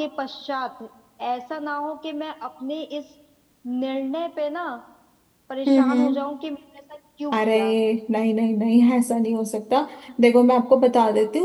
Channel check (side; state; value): both; identical; correlation 1.00